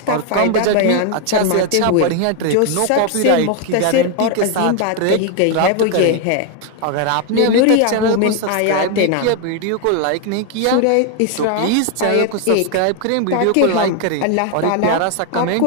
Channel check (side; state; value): both; different; correlation 0.01